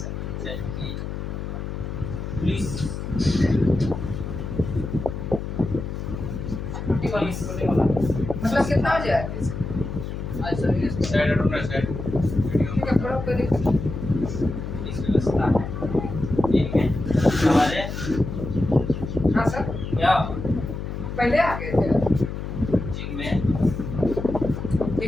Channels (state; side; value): noise; left; hum, 6 dB below the sound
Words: पंचायत की पुलिस मतलब कितना बजे आए थे? आज सवेरे साइड ढूंढना साइड ठीक है थोड़ा पहले पुलिस व्यवस्था है। ठीक है, हमारे हाँ सर क्या पहले आ गए थे जिनमें